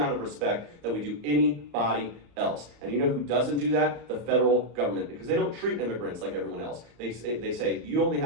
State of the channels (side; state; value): left; late; 34 ms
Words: of respect that we do anybody else. And you know who doesn't do that? The federal government, because they don't treat immigrants like everyone else. They say you only